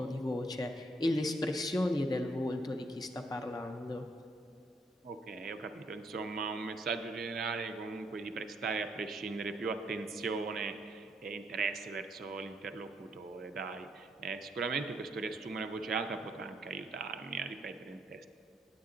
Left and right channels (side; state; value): both; normal; correlation 0.73